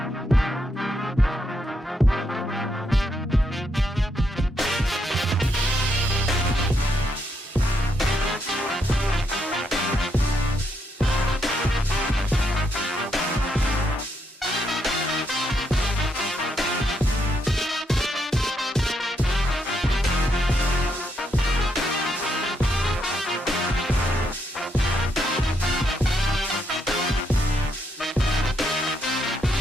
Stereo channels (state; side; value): normal; both; correlation 0.77